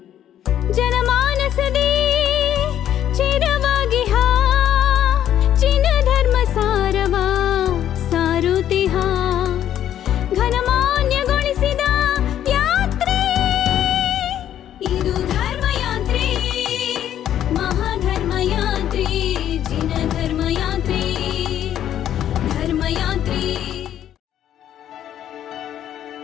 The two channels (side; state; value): right; quieter; 10.9 dB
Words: ಜನಮಾನಸದೇ ಚಿರವಾಗಿ ಚಿನ್ನ ಧರ್ಮ ಸಾರವ ಸಾರುತಿಹ ಘನಮಾನ್ಯಗೊಳಿಸಿದ ಯಾತ್ರೆ ಇದು ಧರ್ಮಯಾತ್ರೆ ಮಹಾಧರ್ಮಯಾತ್ರೆ ಜಿನ ಧರ್ಮಯಾತ್ರೆ ಧರ್ಮಯಾತ್ರೆ.